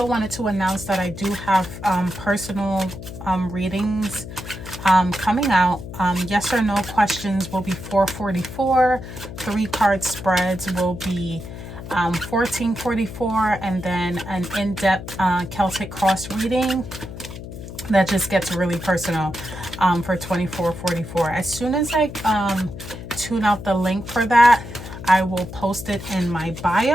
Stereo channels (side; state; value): left; noise; hum, 11 dB below the sound